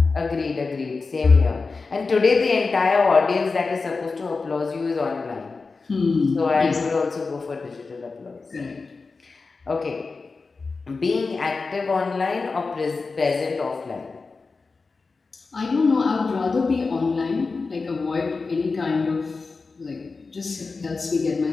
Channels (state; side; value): quieter; right; 4.2 dB